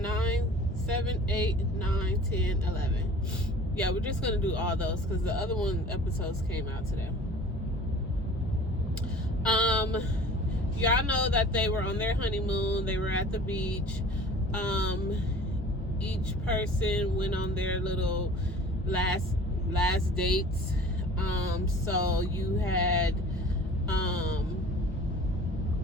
9, 7, 8, 9, 10, 11? Yeah, we're just gonna do all those because the other episodes came out today. Y'all know that they were on their honeymoon. They were at the beach. Each person went on their little last dates. So you had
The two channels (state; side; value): normal; both; correlation 0.45